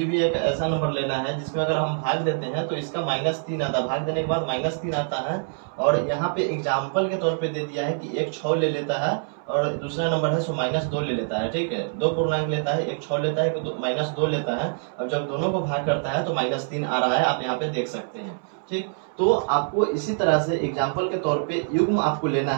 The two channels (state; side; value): silent; left; 62 dB below the other